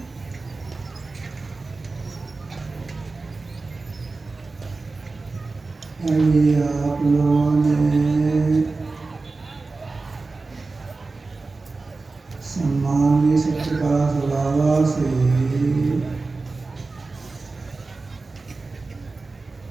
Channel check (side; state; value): left; quieter; 3.7 dB